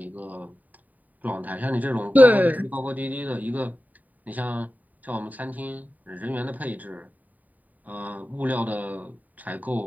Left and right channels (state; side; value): late; left; 0.078 ms